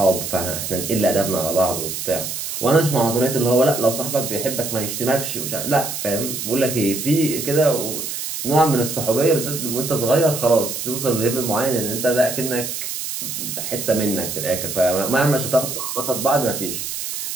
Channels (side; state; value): right; noise; hiss, 5 dB below the sound